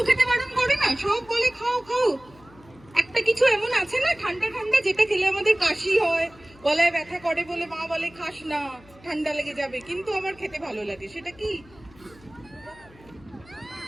খেতে বারণ করে না, সব বলে খাও খাও। একটা কিছু এমন আছে না ঠান্ডা ঠান্ডা, যেটা খেলে আমাদের কাশি হয়, গলায় ব্যথা করে বলে মা বলে খাস না, ঠান্ডা লেগে যাবে, কিন্তু আমার খেতে ভালো লাগে। সেটা কি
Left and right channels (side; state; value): left; noise; hum, 25 dB below the sound